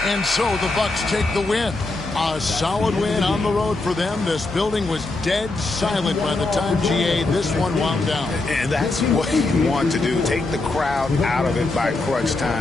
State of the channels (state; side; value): quieter; right; 3.2 dB